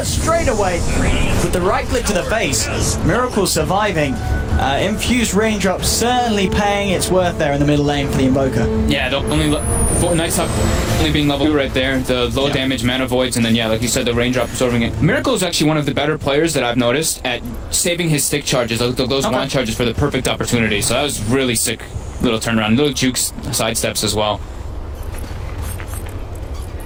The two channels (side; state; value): both; identical; correlation 1.00